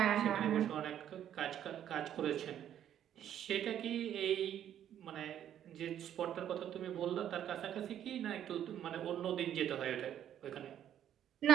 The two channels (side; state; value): left; quieter; 10.4 dB